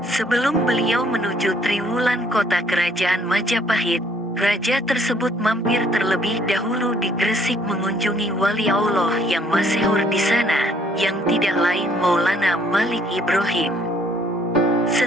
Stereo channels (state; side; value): normal; both; correlation 0.63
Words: Sebelum beliau menuju Triwulan, kota kerajaan Majapahit, raja tersebut mampir terlebih dahulu di Gresik mengunjungi wali Allah yang masyhur di sana, yang tidak lain Maulana Malik Ibrahim.